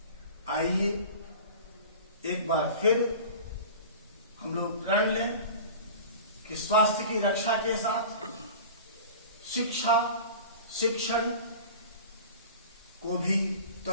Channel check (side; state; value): both; inverted; correlation -0.37